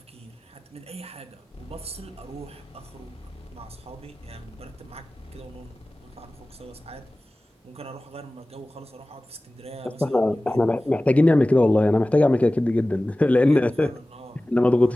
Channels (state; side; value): normal; both; correlation 0.97